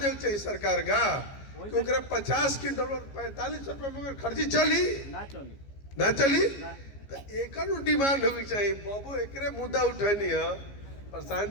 चाहिए सरकार का, क्योंकि 50 क्विंटल 45 रुपए में खर्ची चली ना चली, तो एक डिमांड होगी चाहिए। बाबू एक मुद्दा उठनी है,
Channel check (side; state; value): right; late; 15 ms